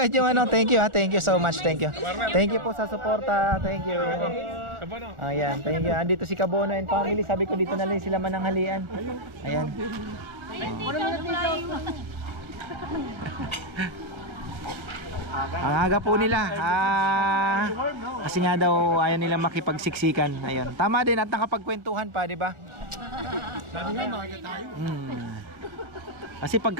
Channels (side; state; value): left; late; 1.4 ms